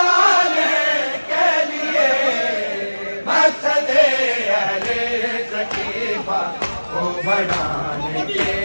کے لیے مقصد اہل ثقیفہ کو بڑھانے کے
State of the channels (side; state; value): both; inverted; correlation -1.00